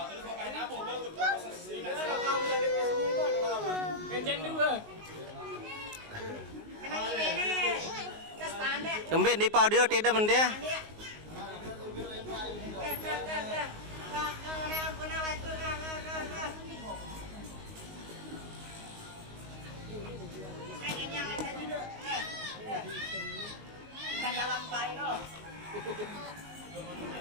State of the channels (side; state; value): left; late; 19 ms